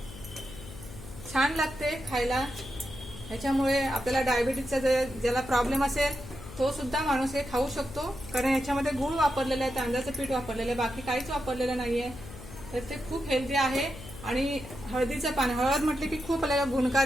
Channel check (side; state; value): left; noise; hum, 14 dB below the sound